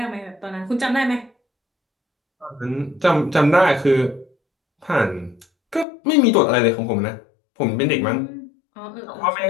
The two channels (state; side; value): drops out; right; at 5.9 s